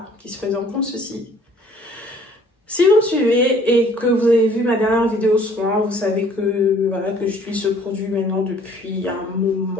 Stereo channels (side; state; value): both; normal; correlation 0.57